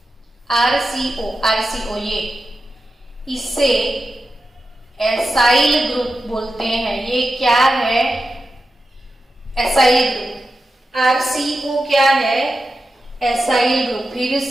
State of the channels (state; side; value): normal; both; correlation 0.91